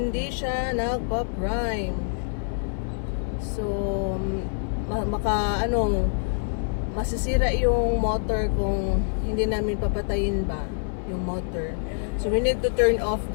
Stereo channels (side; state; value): right; silent; 57 dB below the other